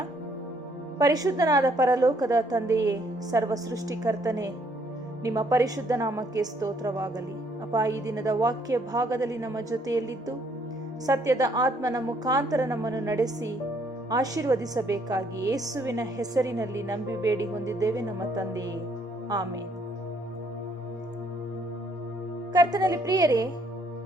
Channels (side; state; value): both; normal; correlation 0.67